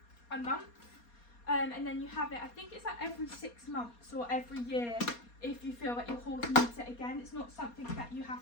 a month, and then you have it, I think it's like every 6 months or every year if you feel that your horse needs it again. It's not something that you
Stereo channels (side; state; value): right; late; 4.2 ms